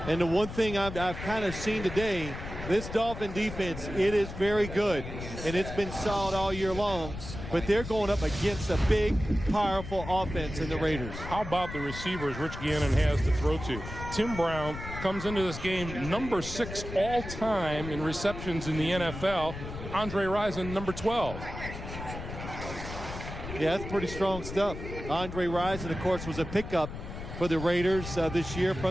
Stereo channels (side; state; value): left; noise; rumble, 9 dB below the sound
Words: And the one thing I've kind of seen today, this Dolphin defense, it is very good. And it's been solid all year long. But they're going up against a big, powerful offense in the Raiders. How about the receivers Rich Gannon has to throw to? Tim Brown comes into this game number 6 all-time in receptions in the NFL. Andre Rison, number 12. Yeah, that's pretty strong stuff. Andre Rison, of course, was a pickup for the Raiders this year